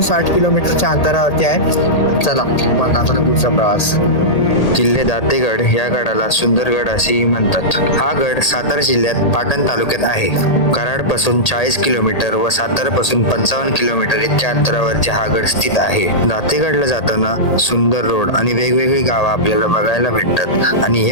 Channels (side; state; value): right; late; 1.8 ms